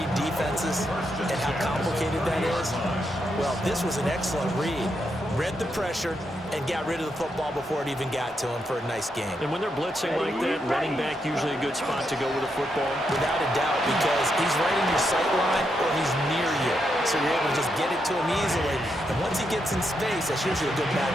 defenses and how complicated that is. Well, this was an excellent read. Read the pressure and got rid of the football before it even got to him for a nice game. And when they're blitzing like that, running back usually a good spot to go with the football. Without a doubt, because he's right in your sight line or he's near you. So you're able to just get it to him easily. And once he gets in space, that's usually a good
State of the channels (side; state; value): both; normal; correlation 0.82